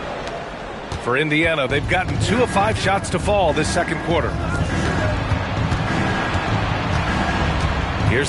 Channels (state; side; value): identical; both; correlation 1.00